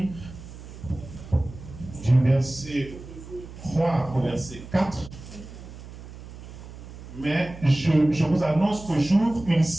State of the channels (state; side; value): noise; right; hum, 15 dB below the sound